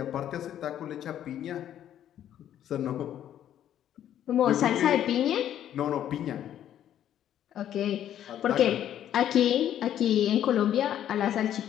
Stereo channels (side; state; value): right; quieter; 10.9 dB